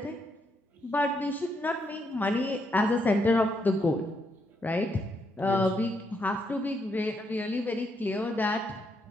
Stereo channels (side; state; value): both; normal; correlation 0.77